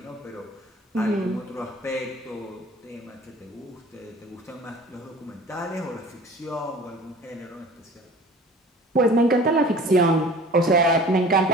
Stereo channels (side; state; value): both; normal; correlation 0.45